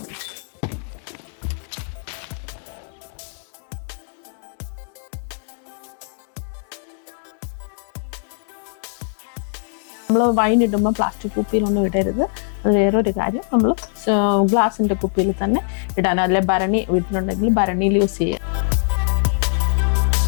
നമ്മൾ വൈൻ ഇടുമ്പോൾ പ്ലാസ്റ്റിക് കുപ്പിയിലൊന്നും ഇടരുത്. അത് വേറൊരു കാര്യം, നമ്മൾ ഗ്ലാസിൻ്റെ കുപ്പിയിൽ തന്നെ ഇടാൻ, അല്ലെ ഭരണി വീട്ടിലുണ്ടെങ്കിൽ ഭരണിയിൽ യൂസ് ചെയ്യുക.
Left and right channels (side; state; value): right; silent; digital silence